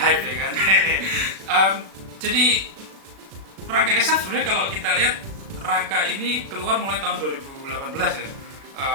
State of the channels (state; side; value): late; left; 36 ms